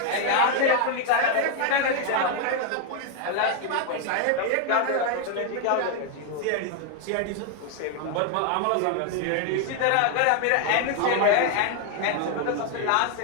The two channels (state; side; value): different; both; correlation 0.00